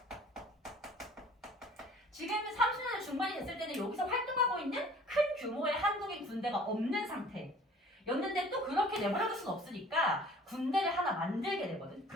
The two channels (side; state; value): both; normal; correlation 0.50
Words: 지금 30년대 중반이 됐을 때는 여기서 활동하고 있는 큰 규모의 한국인 군대가 없는 상태였는데 또 그렇게 내버려둘 수는 없으니까 군대를 하나 만들게 되거든.